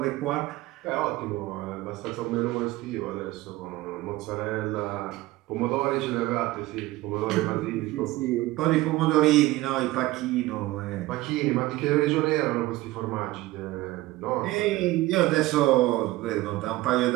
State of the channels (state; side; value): quieter; left; 18.0 dB